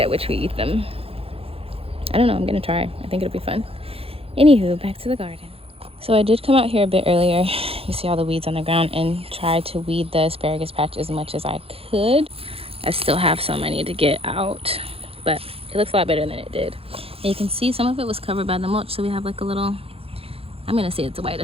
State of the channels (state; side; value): late; left; 0.28 ms